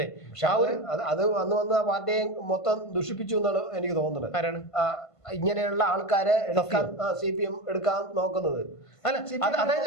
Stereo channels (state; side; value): late; right; 1.5 ms